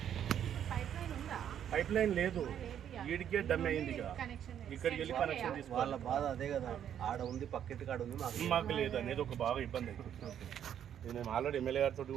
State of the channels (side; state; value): left; quieter; 9.6 dB